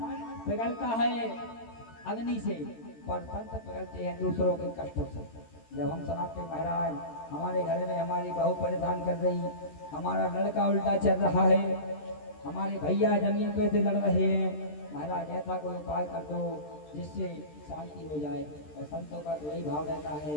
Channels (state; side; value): late; right; 13 ms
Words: पिघलता है अग्नि से, पर संत पिघलते हैं दूसरों के कष्टों से। जब हम सुनाते महाराज हमारे घर में हमारी बहू परेशान कर रही, हमारा लड़का उल्टा चल रहा है, हमारे भैया जमीन पे से लड़ रहे हैं, महाराज ऐसा कोई उपाय कर दो जिससे शांति हो जाए। और संतों का तो यही भाव रहता